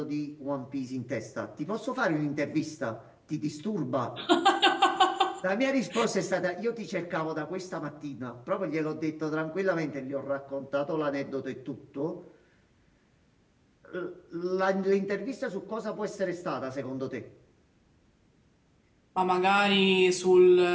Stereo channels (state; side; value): identical; both; correlation 1.00